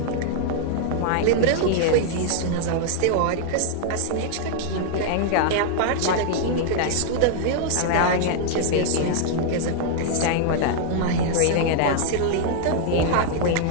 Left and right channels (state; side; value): different; both; correlation -0.01